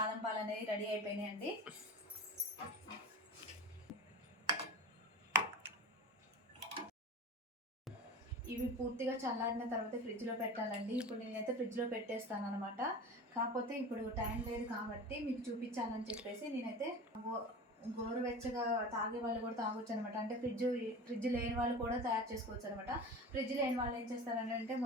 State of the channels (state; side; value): normal; both; correlation 0.33